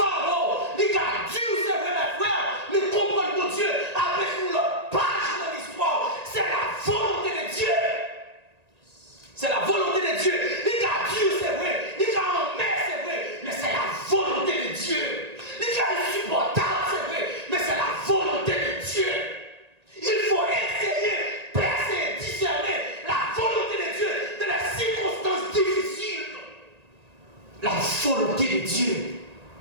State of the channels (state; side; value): late; left; 1.9 ms